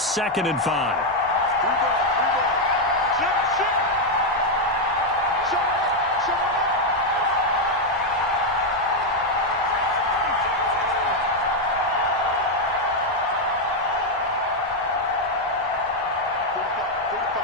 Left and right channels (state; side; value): normal; both; correlation 0.02